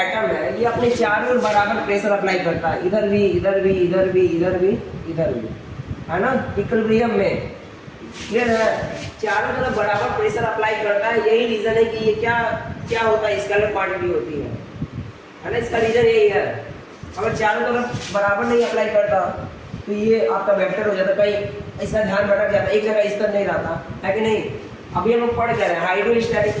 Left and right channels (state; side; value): identical; both; correlation 1.00